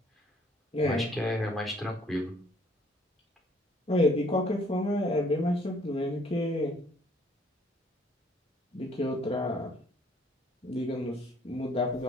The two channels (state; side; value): normal; both; correlation 0.61